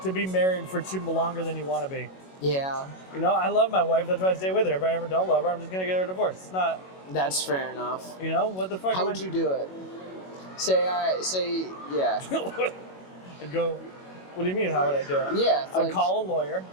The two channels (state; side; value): late; right; 21 ms